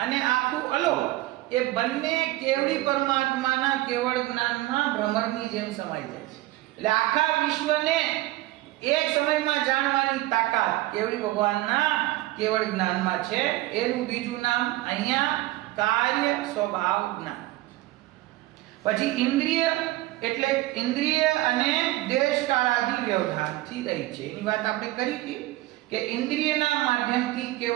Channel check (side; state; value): left; quieter; 17.6 dB